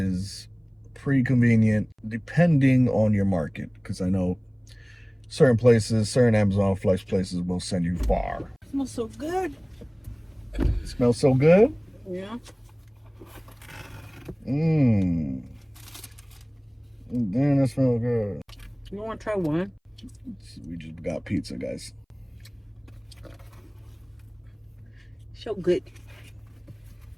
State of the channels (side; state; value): both; identical; correlation 1.00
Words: pretty convenient depending on your market, because I know certain Amazon Flex places will send you far. It smells so good. It smells so good? Yeah. Damn, that smells good. You want to try one? We just got pizza, guys. So good.